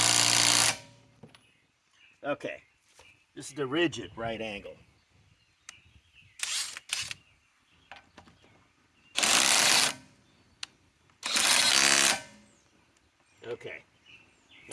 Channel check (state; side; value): identical; both; correlation 1.00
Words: Okay, this is the RIDGID right angle. Okay,